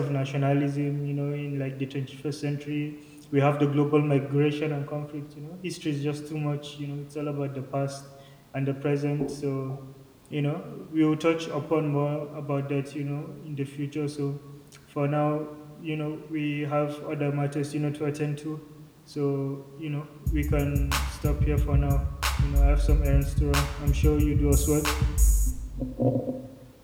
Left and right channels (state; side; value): identical; both; correlation 1.00